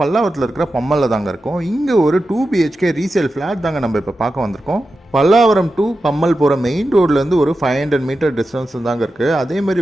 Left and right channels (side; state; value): both; normal; correlation 0.91